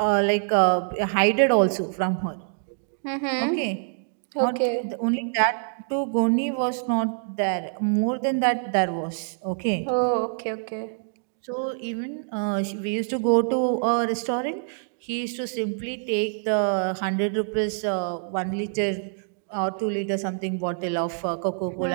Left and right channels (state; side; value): silent; left; digital silence